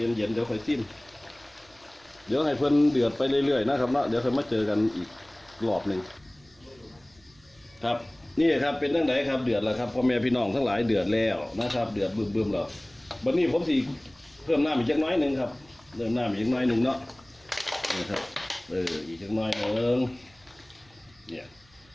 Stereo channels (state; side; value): noise; right; hum, 30 dB below the sound